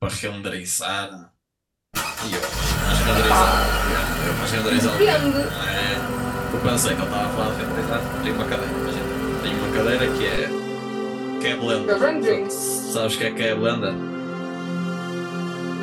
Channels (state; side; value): identical; both; correlation 1.00